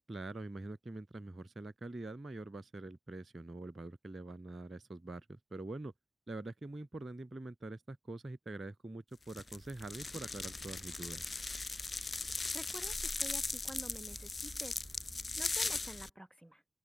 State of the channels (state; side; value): normal; both; correlation 0.93